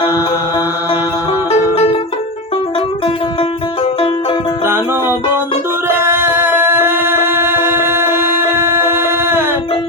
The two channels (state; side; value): normal; both; correlation 0.17